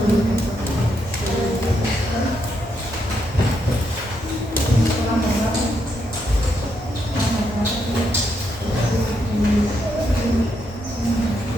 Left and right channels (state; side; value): normal; both; correlation 0.79